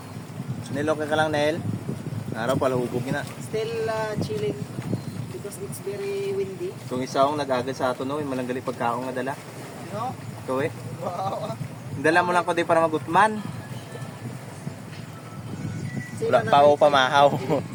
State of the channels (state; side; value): identical; both; correlation 1.00